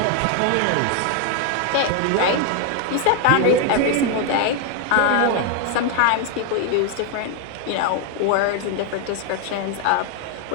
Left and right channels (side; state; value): both; different; correlation 0.00